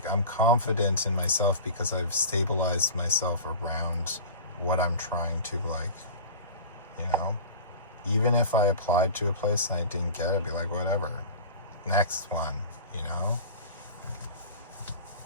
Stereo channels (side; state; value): both; inverted; correlation -0.35